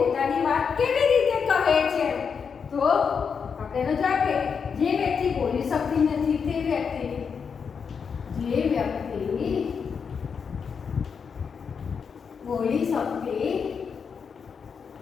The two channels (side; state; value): right; quieter; 6.2 dB